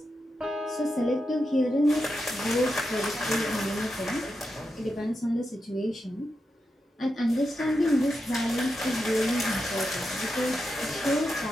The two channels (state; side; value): normal; both; correlation 0.87